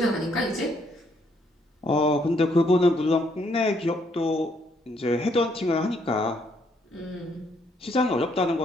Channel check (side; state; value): both; normal; correlation 0.70